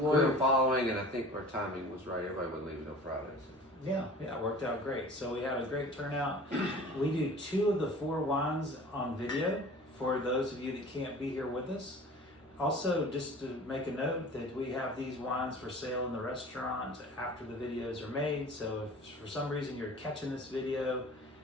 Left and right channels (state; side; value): normal; both; correlation 0.43